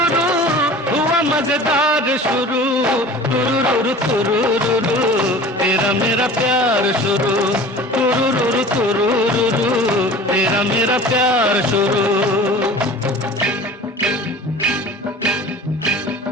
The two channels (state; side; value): normal; both; correlation 0.41